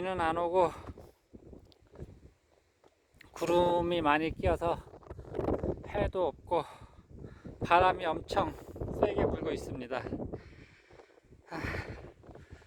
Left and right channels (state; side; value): identical; both; correlation 1.00